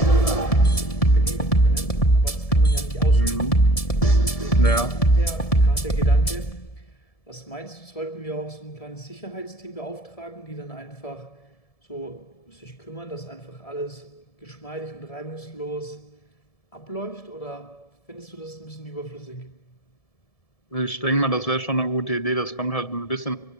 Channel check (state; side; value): late; right; 1.7 ms